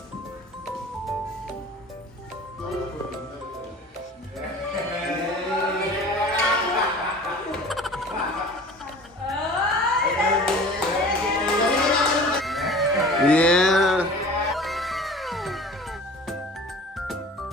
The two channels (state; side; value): normal; both; correlation 0.42